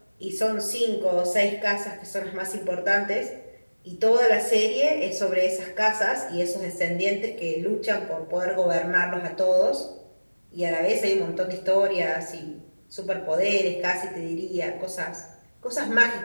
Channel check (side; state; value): both; inverted; correlation -1.00